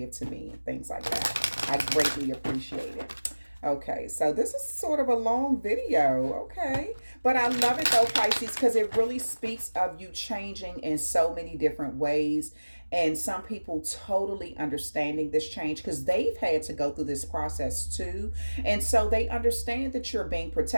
to me and things like that. I greatly appreciate it. Okay, so this is sort of a long video, okay? But I love it though, Pisces, because it really speaks of you changing in so many different ways. And some people totally understanding this change because they've had to go through this process too. And so they understand that you're being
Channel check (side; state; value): both; inverted; correlation -1.00